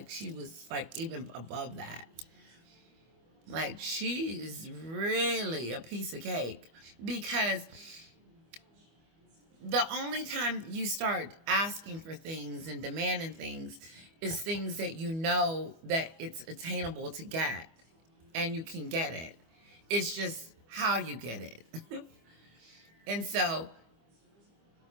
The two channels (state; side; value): late; left; 25 ms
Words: She was, even above that. She is really a piece of cake because the only time you start asking for things and demanding things is things that you know that it's attainable to get and you can get it. It's just how you get it. And so,